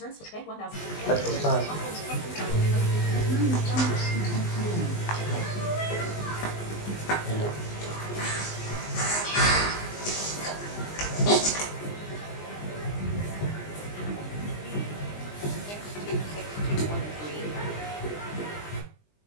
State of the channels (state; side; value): late; right; 20 ms